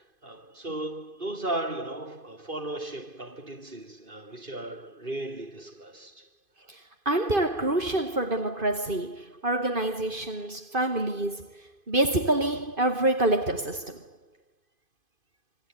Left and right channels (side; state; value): left; late; 2.5 ms